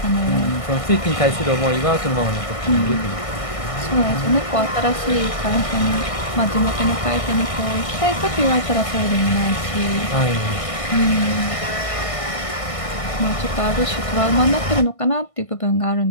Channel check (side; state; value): right; late; 1.6 ms